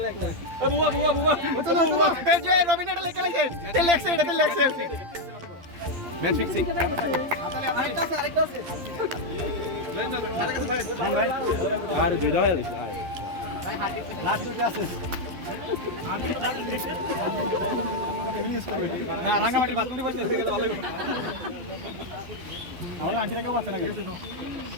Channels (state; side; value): late; left; 11 ms